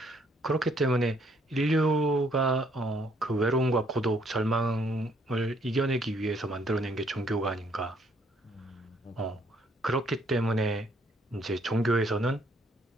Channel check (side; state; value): both; normal; correlation 0.67